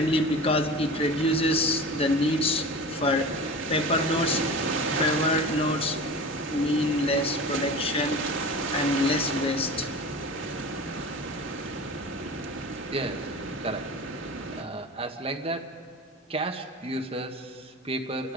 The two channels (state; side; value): normal; both; correlation 0.34